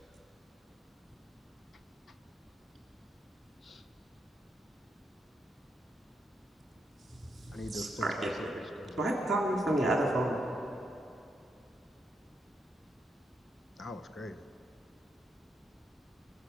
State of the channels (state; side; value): normal; both; correlation 0.80